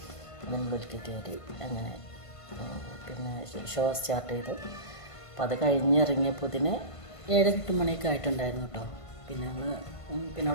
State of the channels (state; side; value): late; right; 1.5 ms